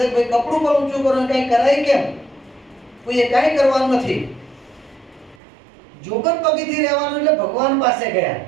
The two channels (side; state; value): left; drops out; at 5.4 s